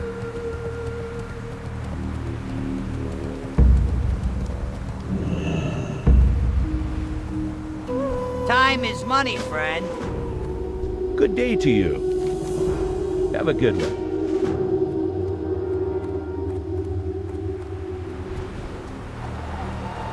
Good day to you. Have a good one.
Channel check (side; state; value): both; identical; correlation 1.00